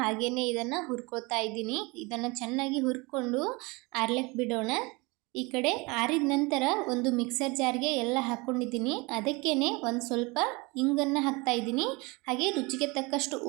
ಇದನ್ನು ಹುರ್ಕೋತಾ ಇದ್ದೀನಿ। ಇದನ್ನು ಚೆನ್ನಾಗಿ ಹುರ್ಕೊಂಡು ಆರ್ಲಿಕ್ಕೆ ಬಿಡೋಣ। ಈ ಕಡೆ ಆರಿದ ನಂತರ ಒಂದು ಮಿಕ್ಸರ್ ಜಾರ್ಗೆ ಎಲ್ಲ ಹಾಕ್ಕೊಂಡಿದ್ದೀನಿ, ಅದಕ್ಕೇನೆ ಒಂದು ಸ್ವಲ್ಪ ಇಂಗನ್ನು ಹಾಕ್ತಾ ಇದ್ದೀನಿ, ಹಾಗೆ ರುಚಿಗೆ ತಕ್ಕಷ್ಟು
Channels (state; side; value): quieter; left; 26.1 dB